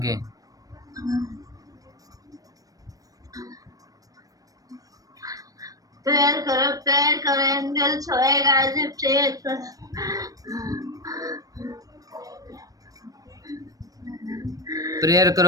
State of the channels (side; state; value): left; late; 0.18 ms